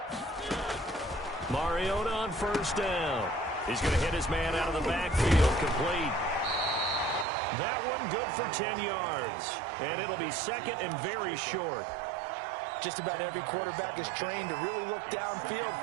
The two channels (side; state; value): left; drops out; at 7.2 s